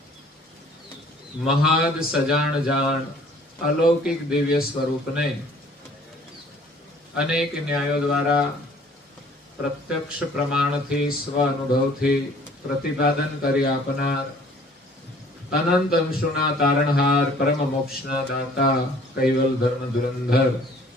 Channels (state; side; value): normal; both; correlation 0.54